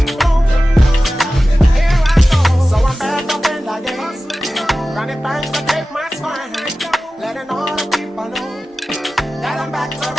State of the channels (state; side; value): normal; both; correlation 0.95